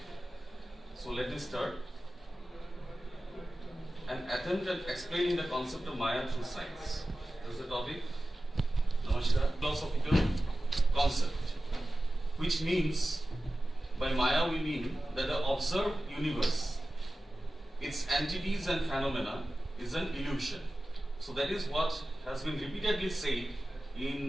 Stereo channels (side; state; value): both; normal; correlation 0.95